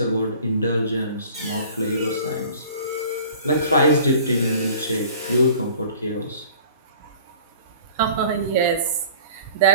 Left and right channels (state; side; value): inverted; both; correlation -0.47